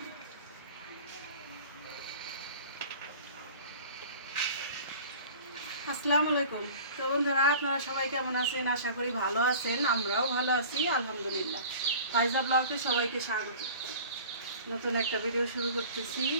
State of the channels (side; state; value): both; inverted; correlation -0.42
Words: আসসালামু আলাইকুম। তো বন্ধুরা, আপনারা সবাই কেমন আছেন? আশা করি ভালো আছেন। আমরাও ভালো আছি আলহামদুলিল্লাহ। ফাইজা ব্লগে সবাইকে স্বাগত। নতুন একটা ভিডিও শুরু করতেছি।